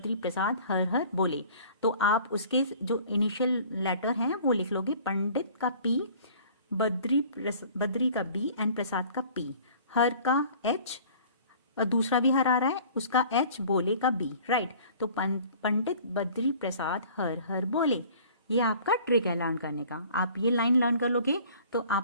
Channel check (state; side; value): inverted; both; correlation -0.49